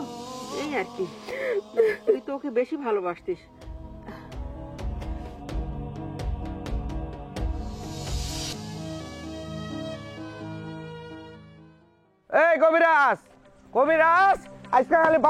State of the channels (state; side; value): identical; both; correlation 1.00